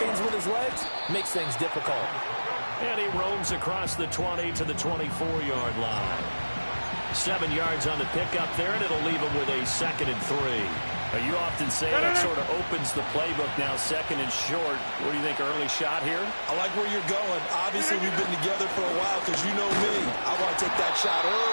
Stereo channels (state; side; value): inverted; both; correlation -1.00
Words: with his legs makes things difficult. And he roams across the 20 to the 24-yard line. 7 yards on the pickup there, and it'll leave him with a 2nd and 3. You often say that sort of opens the playbook now, 2nd and short. What do you think, early shot here? I like where you're going. Obviously, we've been together for a while because you know me. I want to take that shot